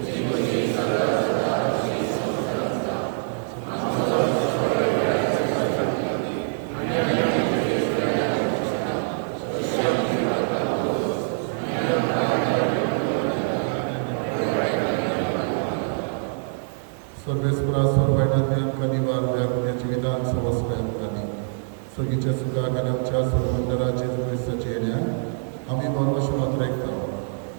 सर्वेस्परा सोरबायणांतल्यान कनिवार व्यापण्याचे विधान सवस्वयांनी सगळीच्या सुखाक आनी आमच्या सोरमंडळाचे क्रिस्ताचे येण्याक आमी बरोवश मात्र आयकता.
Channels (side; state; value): left; silent; 58 dB below the other